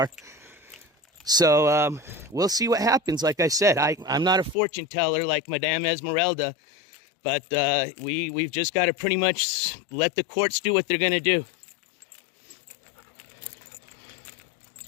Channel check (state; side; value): drops out; right; at 4.5 s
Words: So we'll see what happens. Like I said, I'm not a fortune teller like Madame Esmeralda, but we've just got to pretty much let the courts do what they're going to do.